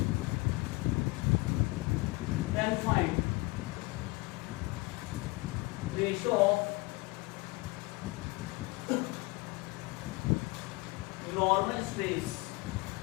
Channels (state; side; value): quieter; right; 24.2 dB